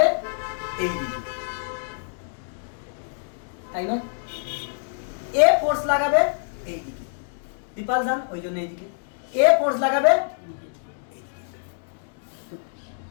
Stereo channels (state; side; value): silent; right; 61 dB below the other